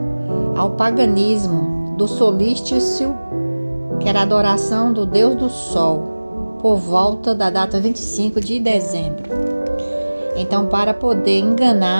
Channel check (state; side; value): inverted; both; correlation -1.00